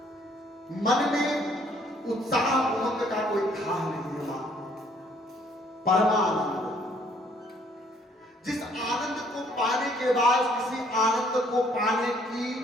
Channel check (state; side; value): normal; both; correlation 0.63